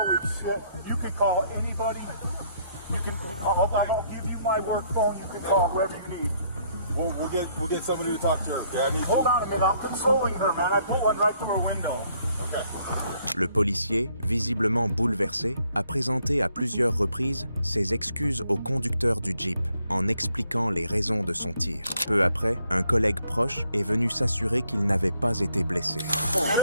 shit. You can call anybody. I'm going to give you my work phone. You can call whoever you need. We'll get somebody to talk to her. Okay, Hold on a minute. I'm consoling her, man. I put one right through her window. Okay. Le policier, visiblement bouleversé, a présenté à plusieurs reprises ses excuses au conducteur du Jeep, en expliquant les raisons de son tir. Peu après, un collègue proche est venu s'assurer qu'il n'avait pas été blessé.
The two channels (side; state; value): both; inverted; correlation -0.68